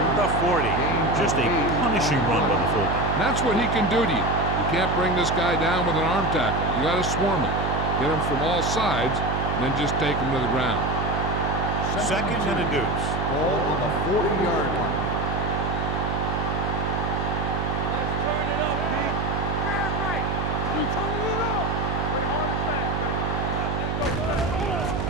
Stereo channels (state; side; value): noise; right; hum, 1 dB below the sound